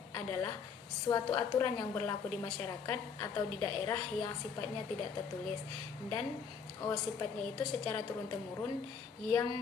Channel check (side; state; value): right; quieter; 6.1 dB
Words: adalah suatu aturan yang berlaku di masyarakat atau di daerah yang sifatnya tidak tertulis dan sifatnya itu secara turun-temurun